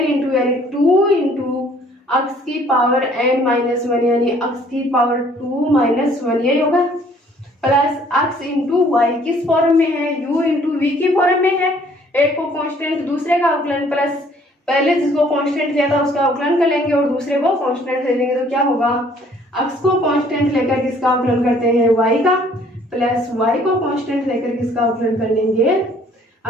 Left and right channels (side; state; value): both; normal; correlation 0.59